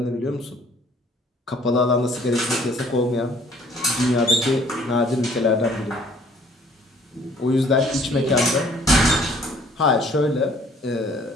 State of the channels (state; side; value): normal; both; correlation 0.57